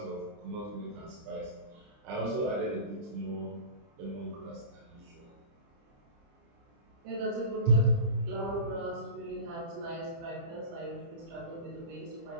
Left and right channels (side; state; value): left; late; 30 ms